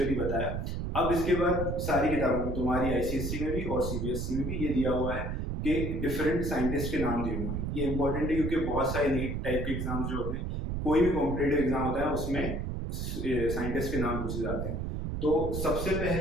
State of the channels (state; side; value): noise; right; rumble, 3 dB below the sound